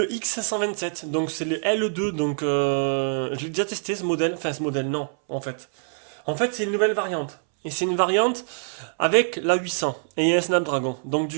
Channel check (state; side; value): silent; left; 62 dB below the other